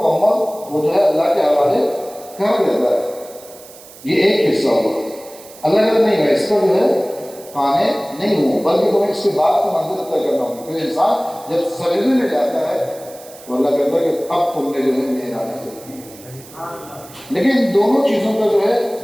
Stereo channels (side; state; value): right; noise; hiss, 20 dB below the sound